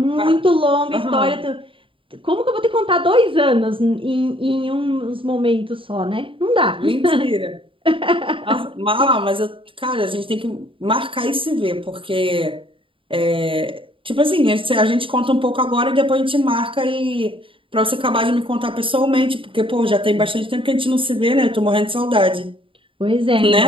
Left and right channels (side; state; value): left; late; 0.25 ms